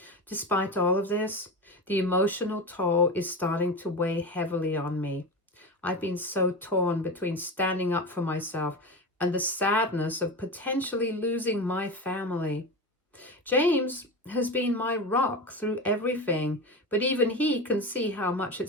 Despite all of this, the emotional toll is starting to weigh heavily on me. I've been so torn between standing up for myself and the sadness of potentially losing my family. James has been my rock through everything, but even he can see how much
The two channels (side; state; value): both; normal; correlation 0.24